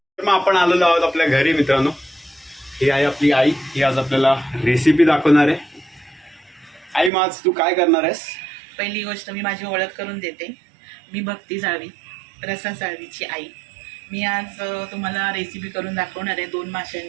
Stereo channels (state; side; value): drops out; left; at 7.1 s